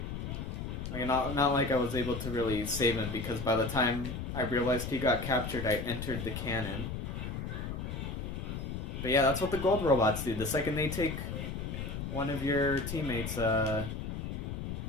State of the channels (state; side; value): noise; left; rumble, 5 dB below the sound